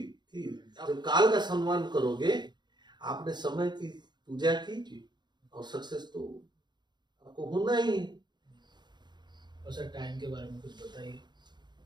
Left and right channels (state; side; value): late; left; 0.21 ms